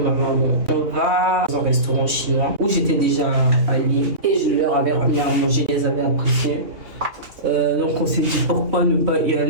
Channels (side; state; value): left; late; 3.0 ms